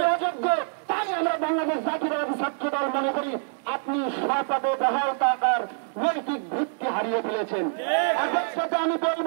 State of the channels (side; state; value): left; silent; digital silence